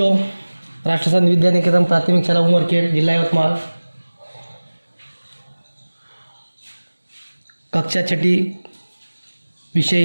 राष्ट्रसंत विद्या निकेतन प्राथमिक शाला उमरखेड, जिला यवतमाळ, कक्षा छठी, विषय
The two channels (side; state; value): both; inverted; correlation -1.00